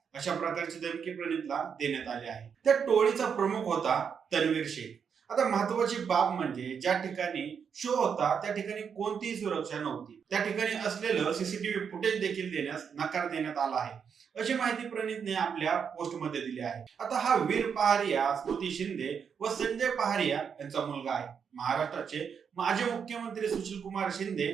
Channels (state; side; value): quieter; left; 6.9 dB